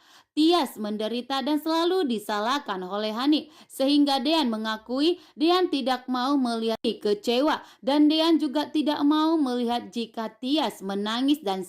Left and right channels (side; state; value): both; identical; correlation 1.00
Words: Tias menderita dan selalu disalahkan oleh Hani, sehingga Dean mengakui Dean tidak mau melihat kecewa dan Dean juga tidak mau melihat jika Tias menangis dan